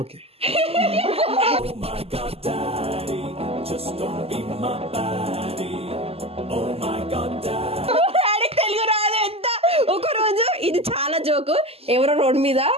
డాడీకి తెలుగు రాదు ఎంత. ఒక రోజు ఇది చాలా జోకు, ఎవరో రోడ్ మీద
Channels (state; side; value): late; left; 0.29 ms